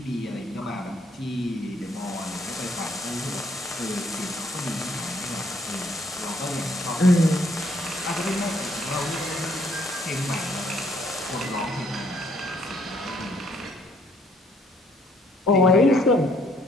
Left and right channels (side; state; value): both; normal; correlation 0.66